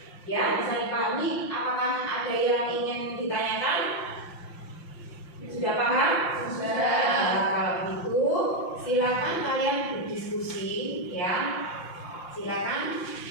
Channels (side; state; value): right; late; 5.7 ms